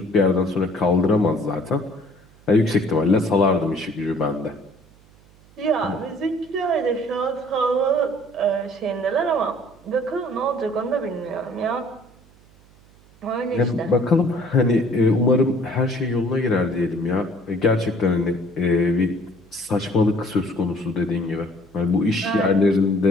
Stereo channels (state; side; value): noise; right; hum, 28 dB below the sound